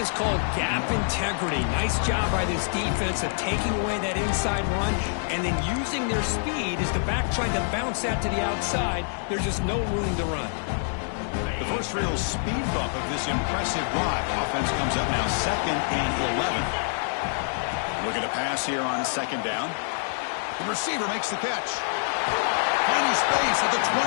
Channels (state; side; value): silent; right; digital silence